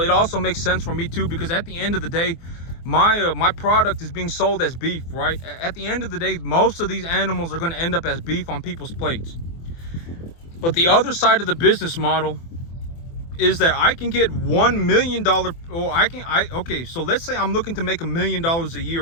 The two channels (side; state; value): right; late; 24 ms